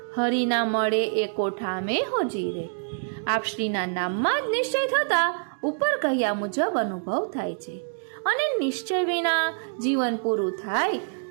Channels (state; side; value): silent; left; digital silence